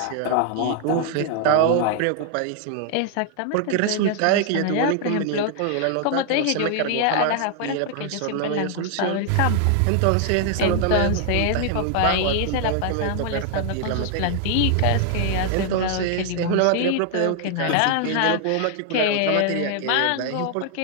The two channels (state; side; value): different; both; correlation 0.00